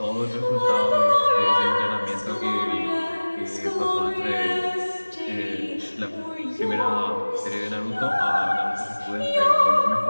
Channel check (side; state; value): both; inverted; correlation -1.00